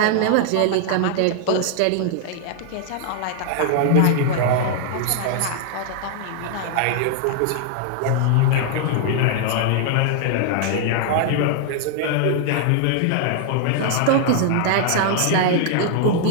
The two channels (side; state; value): both; different; correlation 0.00